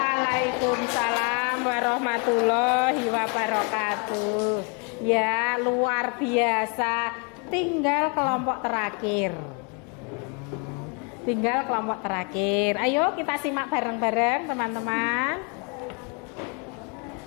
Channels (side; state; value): right; quieter; 34.5 dB